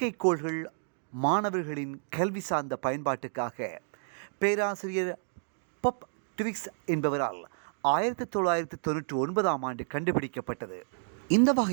மாணவர்களின் கல்வி சார்ந்த பயன்பாட்டுக்காக பேராசிரியர் பப் ட்விக்ஸ் என்பவரால் 1999ஆம் ஆண்டு கண்டுபிடிக்கப்பட்டது. இந்த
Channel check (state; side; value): silent; left; digital silence